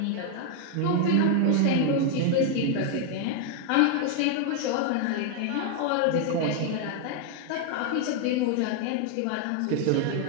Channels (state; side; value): different; both; correlation 0.00